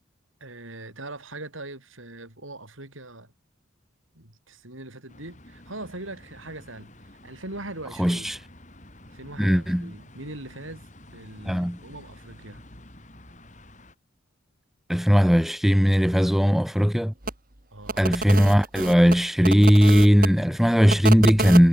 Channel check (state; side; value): normal; both; correlation 0.96